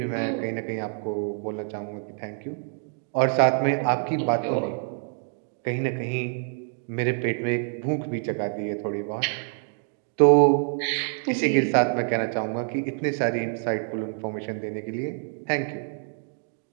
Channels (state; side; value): silent; left; 57 dB below the other